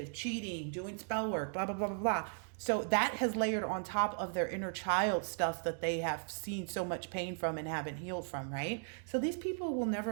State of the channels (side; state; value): left; silent; 53 dB below the other